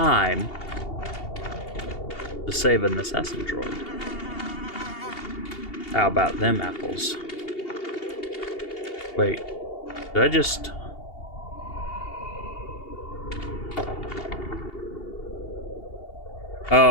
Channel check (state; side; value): late; right; 2.8 ms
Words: to save an assassin droid. How about them apples? Wait, did I just...